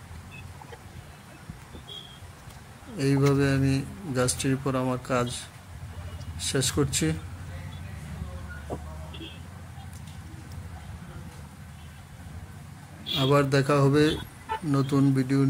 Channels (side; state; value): both; identical; correlation 1.00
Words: এইভাবে আমি গাছটির উপর আমার কাজ শেষ করছি। আবার দেখা হবে নতুন ভিডিও